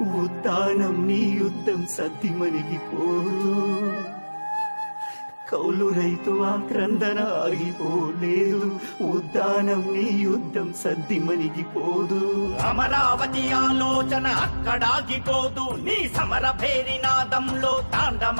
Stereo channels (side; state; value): both; inverted; correlation -1.00